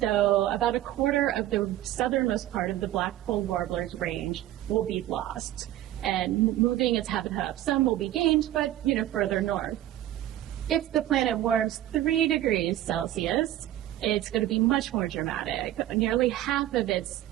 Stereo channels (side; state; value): left; quieter; 13.6 dB